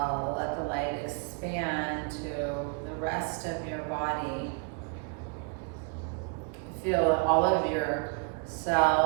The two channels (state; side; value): quieter; left; 37.1 dB